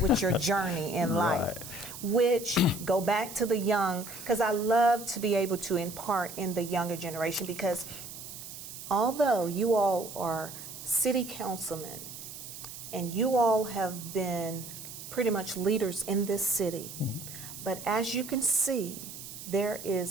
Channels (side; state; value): right; noise; hiss, 12 dB below the sound